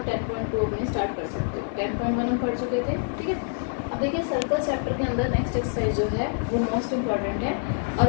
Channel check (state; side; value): silent; right; 61 dB below the other